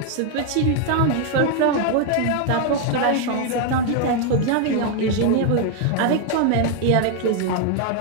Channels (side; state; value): both; different; correlation 0.00